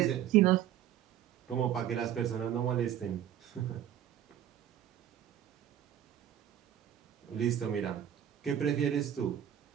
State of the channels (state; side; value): quieter; left; 10.8 dB